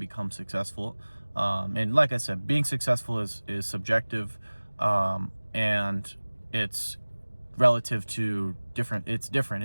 successful. And like I said, being successful is subjective, and it's relative to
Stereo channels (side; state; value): both; inverted; correlation -1.00